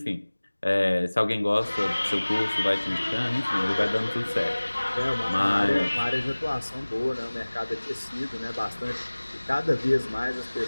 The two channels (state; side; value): inverted; both; correlation -1.00